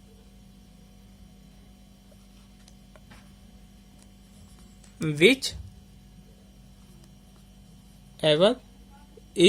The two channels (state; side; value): identical; both; correlation 1.00